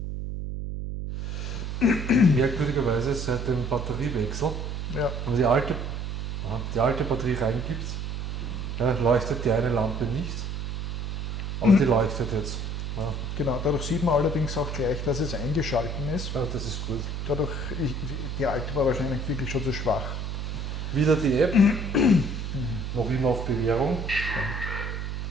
Merkwürdigerweise seit dem Batteriewechsel, also die alte die alte Batterie reingibt, ja, leuchtet die eine Lampe nicht, aber die leuchtet jetzt. Ja. Genau, dadurch sieht man allerdings auch gleich, dass es eingeschalten ist. Ja, das ist gut. Dadurch, die alte war wahrscheinlich wirklich schon zu schwach. Wieder die App, noch immer auf Bewährung,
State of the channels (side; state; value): right; noise; hum, 4 dB below the sound